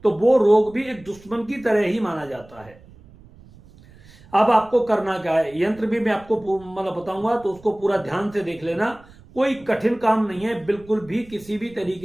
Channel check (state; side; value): noise; right; rumble, 23 dB below the sound